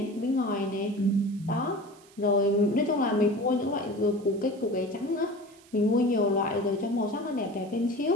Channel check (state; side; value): noise; right; hiss, 26 dB below the sound